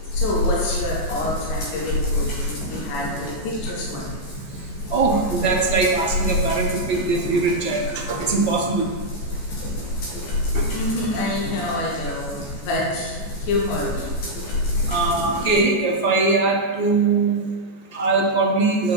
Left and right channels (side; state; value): right; late; 14 ms